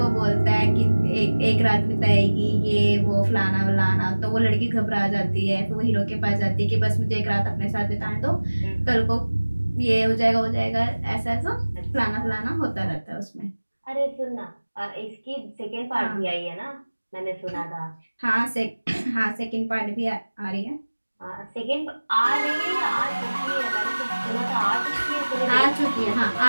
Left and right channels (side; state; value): both; inverted; correlation -1.00